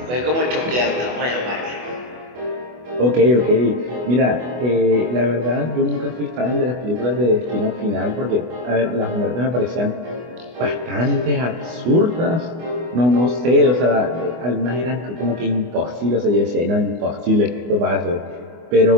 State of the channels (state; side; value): late; left; 24 ms